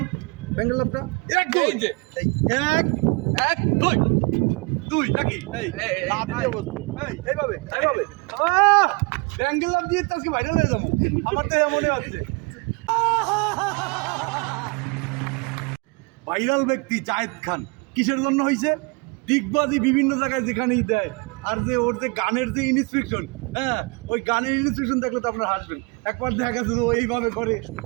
ব্যাঙ্গেল লাভটা। এক দুই, এই যে এই এক এক দুই দুই নাকি এই এই, এই, হাত দিয়ে বসো। এই এইভাবে এইভাবে ব্যাঙ্গেল লাভ দিয়ে তো আজকে ভাইরাল হয়ে যাবো, আমার তো মনে হচ্ছে। ভাইরাল ব্যক্তি জায়েদ খান কিসের জন্য হয়েছে? দিগবাজি বিভিন্ন জায়গায় যেখানেই দেয়, আর যে ওর যে গানের যে ইনস্ট্রাকশন, হ্যাঁ ওই গানের ইনস্ট্রাকশন দেখলে তো আপনার হাসবেন। একবার দেখা গেছে ও এইভাবে করে,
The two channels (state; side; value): quieter; left; 29.7 dB